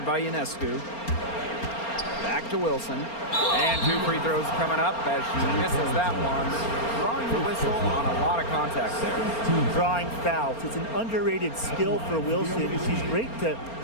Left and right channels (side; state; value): right; late; 4.3 ms